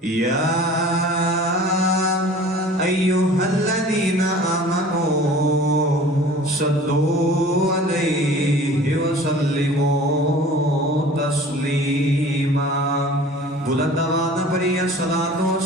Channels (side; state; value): both; normal; correlation 0.45